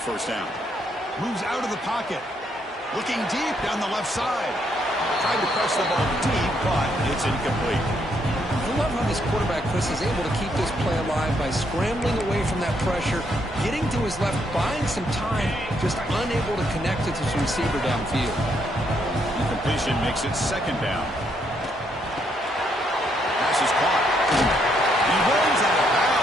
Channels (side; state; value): both; normal; correlation 0.74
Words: first down. Moves out of the pocket. Looking deep down the left side. Tried to press the ball deep, but it's incomplete. I love how this quarterback, Chris, is able to keep this play alive by scrambling away from that pressure, getting to his left, buying some time, just unable to connect it to his receiver downfield. Incompletion makes it second down. Pass is caught. He runs out of